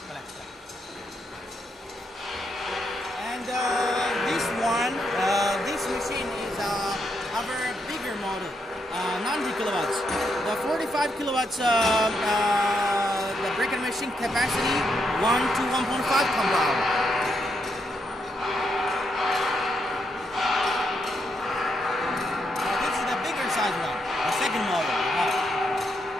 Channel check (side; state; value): both; normal; correlation 0.79